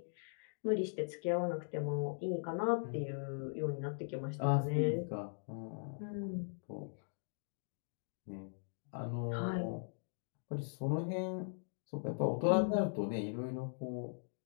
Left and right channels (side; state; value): right; silent; digital silence